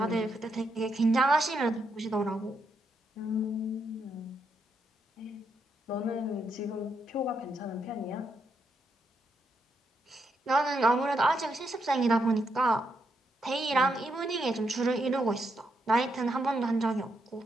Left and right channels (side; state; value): both; normal; correlation 0.79